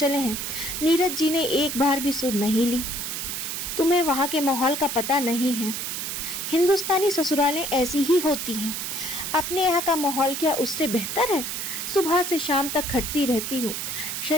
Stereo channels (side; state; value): right; noise; hiss, 4 dB below the sound